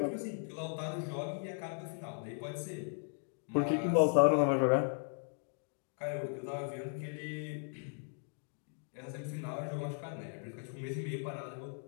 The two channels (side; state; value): right; silent; 53 dB below the other